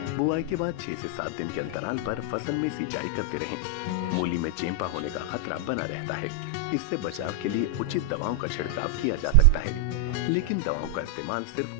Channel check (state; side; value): different; both; correlation 0.00